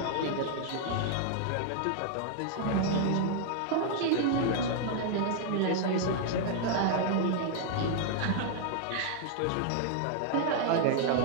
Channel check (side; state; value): both; different; correlation -0.01